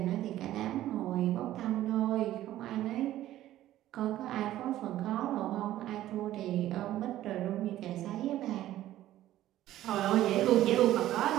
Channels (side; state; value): left; quieter; 13.8 dB